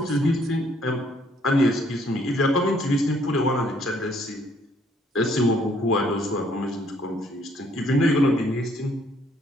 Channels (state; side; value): normal; both; correlation 0.65